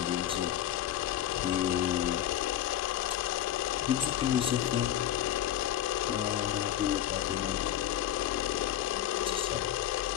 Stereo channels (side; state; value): right; quieter; 11.7 dB